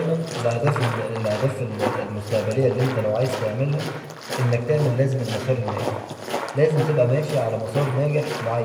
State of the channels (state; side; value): identical; both; correlation 1.00